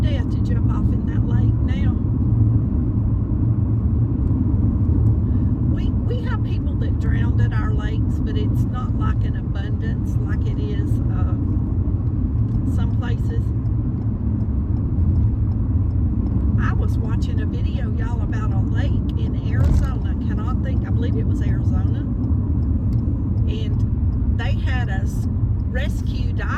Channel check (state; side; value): identical; both; correlation 1.00